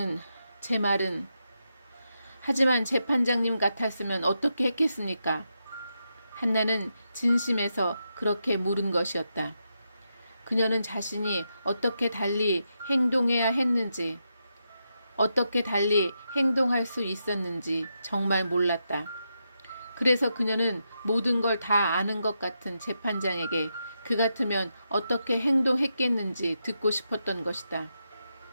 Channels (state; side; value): inverted; both; correlation -0.85